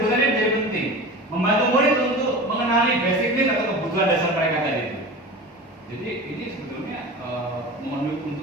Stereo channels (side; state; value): both; normal; correlation 0.33